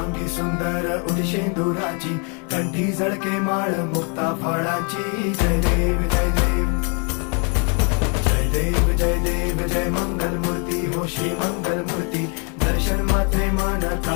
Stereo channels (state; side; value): quieter; right; 36.6 dB